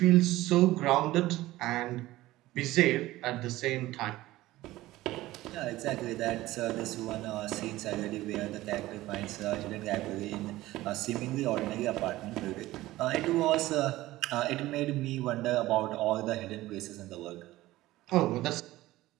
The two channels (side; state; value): left; quieter; 17.0 dB